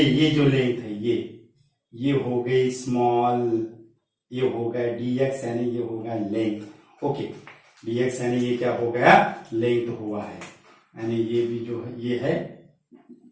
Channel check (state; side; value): identical; both; correlation 1.00